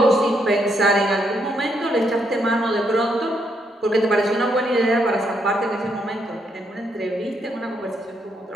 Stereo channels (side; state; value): both; normal; correlation 0.76